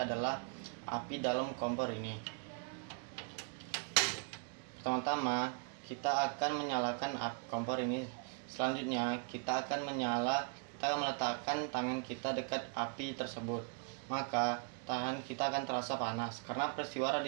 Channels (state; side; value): quieter; left; 39.8 dB